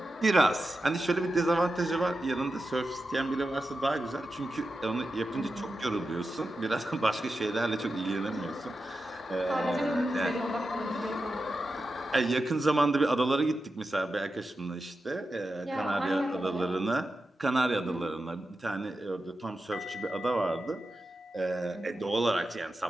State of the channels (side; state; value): both; normal; correlation 0.90